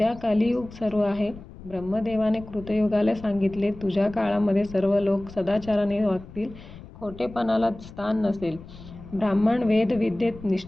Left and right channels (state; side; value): noise; left; rumble, 17 dB below the sound